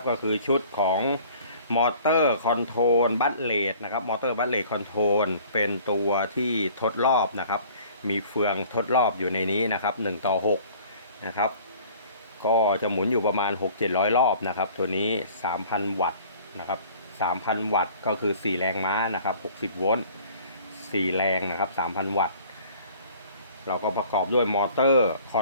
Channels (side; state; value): both; inverted; correlation -0.50